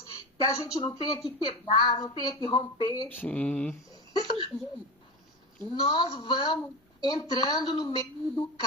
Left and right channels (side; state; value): both; normal; correlation 0.23